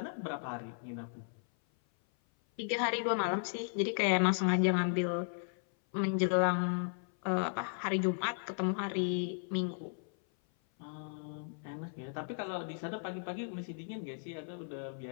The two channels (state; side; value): silent; right; 54 dB below the other